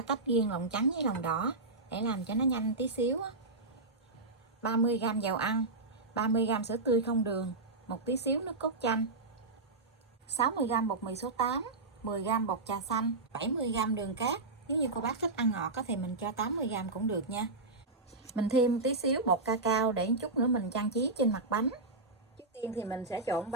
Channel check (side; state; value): left; quieter; 3.4 dB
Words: tách riêng lòng trắng với lòng đỏ để làm cho nó nhanh tí xíu. 30g dầu ăn, 30g sữa tươi không đường, một tí xíu nước cốt chanh, 60g bột mì số 8, 10g bột trà xanh, 70g đường cát. Nếu như cô bác thích ăn ngọt thì mình cho 80g cũng được nha. Mình thêm tí xíu bột cacao để chút nữa mình trang trí trên mặt bánh. Trước tiên thì mình sẽ trộn